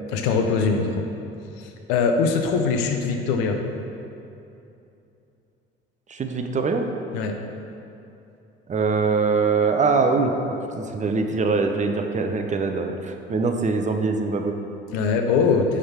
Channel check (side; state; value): both; normal; correlation 0.28